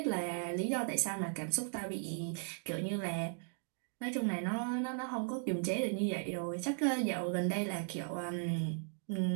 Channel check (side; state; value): left; silent; 53 dB below the other